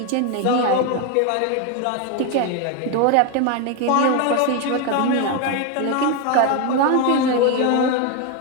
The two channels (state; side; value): different; both; correlation 0.02